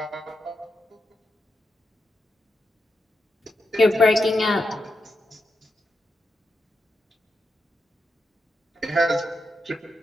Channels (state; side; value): normal; both; correlation 0.86